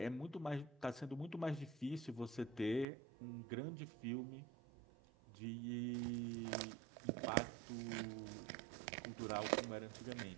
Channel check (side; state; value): left; drops out; at 2.9 s